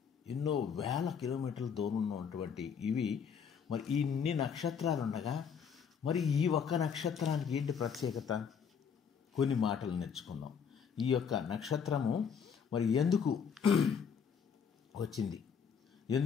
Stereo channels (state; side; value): quieter; right; 6.9 dB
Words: ఎన్నో వేల కిలోమీటర్ల దూరంలో ఉన్నటువంటి ఇవి. మరి ఇన్ని నక్షత్రాలు ఉండగా మరి ఈ ఒక్క నక్షత్రానికి ఏంటి ప్రత్యేకత? కొన్ని మాటలు నేర్చుకుందాం. ఈ యొక్క నక్షత్రము మరి ఎందుకు వచ్చింది,